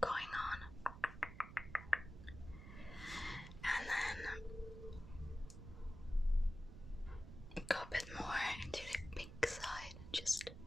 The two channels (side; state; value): right; noise; rumble, 12 dB below the sound